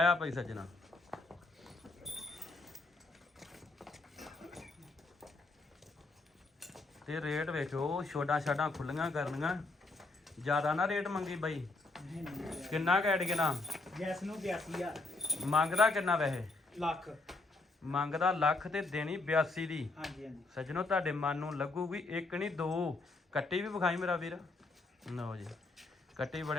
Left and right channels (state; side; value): quieter; right; 3.3 dB